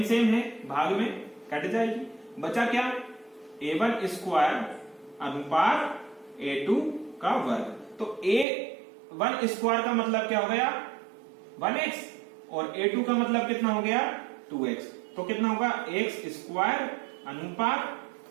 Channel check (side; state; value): left; drops out; at 8.5 s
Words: है भाग में कट जाएगी। बचा क्या? a1² अनुपात a2 का वर्ग। तो a1² का मतलब क्या हो गया? 1x, और a2 का मतलब कितना हो गया? 2x, तो कितना होगा x स्क्वायर अनुपात